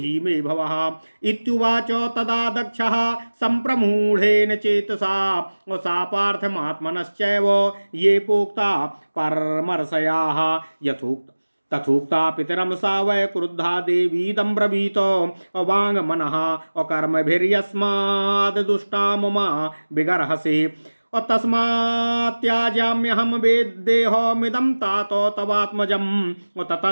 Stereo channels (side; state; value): both; inverted; correlation -1.00